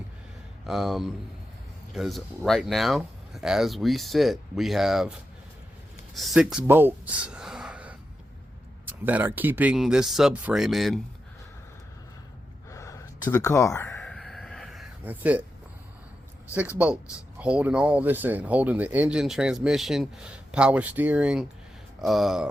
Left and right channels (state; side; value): normal; both; correlation 0.88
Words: because right now, as we sit, we have 6 bolts that are keeping this subframe in to the car. That's it. 6 bolts holding all this in, holding the engine, transmission, power steering,